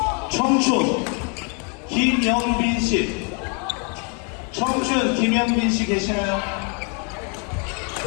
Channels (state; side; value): quieter; right; 36.9 dB